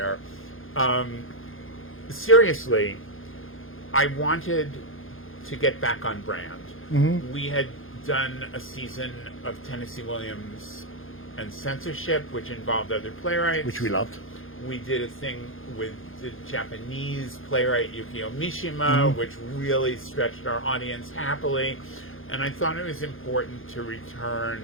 Seriously, I wanted to get back on brand. Mm-hmm. We had done a season of Tennesse Williams and censorship, which involved other playwrights. Which we loved. We did a thing with the Japanese playwright Yukio Mishima, mm-hmm. which really stretched our audience happily. And I thought it was important to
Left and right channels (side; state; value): right; late; 0.60 ms